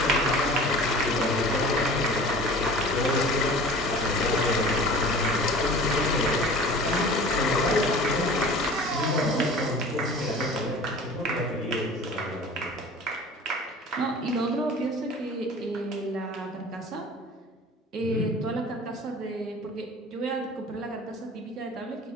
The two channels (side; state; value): both; normal; correlation 0.42